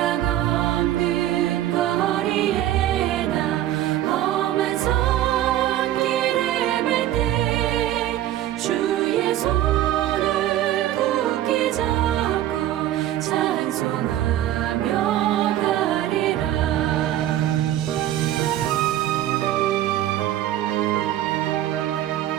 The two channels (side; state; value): left; quieter; 13.0 dB